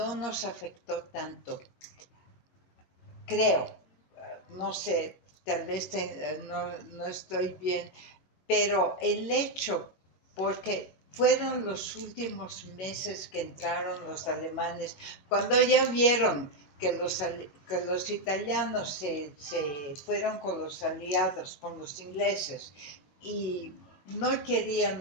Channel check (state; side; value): late; right; 21 ms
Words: nos afectó tanto. Creo, no sé, tal vez no estoy bien, pero el hecho, porque fueron los últimos meses que entraron los alemanes, cuando ya vieron que los italianos se fueron con los aliados, con los ingleses, y no